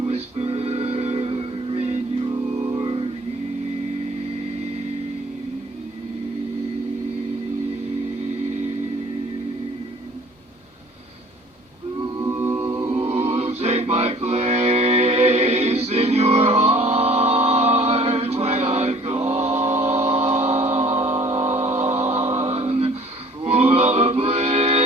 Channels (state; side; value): normal; both; correlation 0.52